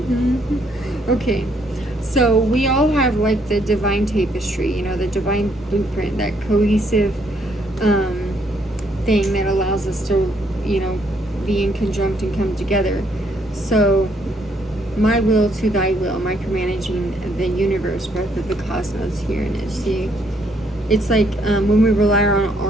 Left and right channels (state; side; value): normal; both; correlation 0.70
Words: Okay, so we all have like the divine tapestry, you know, the divine blueprint, that cohesive thing that allows us to, you know, be in conjunct and come together. So my will to thy will, micromanaging the universe, breath of the cosmos here. And see, it's like when we rely on